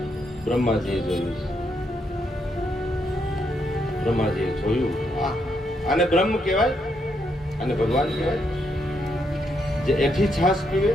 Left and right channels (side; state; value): both; normal; correlation 0.77